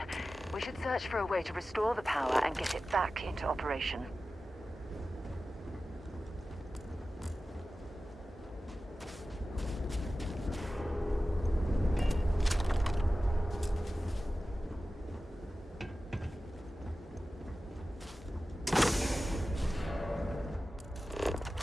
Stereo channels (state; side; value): normal; both; correlation 0.95